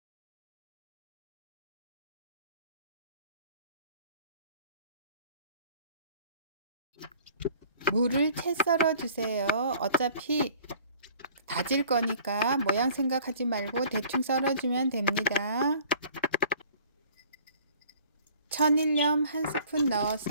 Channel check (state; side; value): inverted; both; correlation -0.52